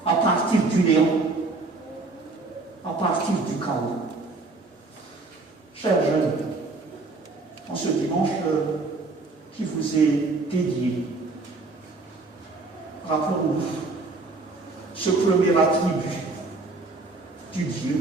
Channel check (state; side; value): quieter; left; 3.5 dB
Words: à partir du néant, à partir du chaos. Chers jeunes, en ce dimanche qui vous est dédié, rappelons-nous ce premier attribut du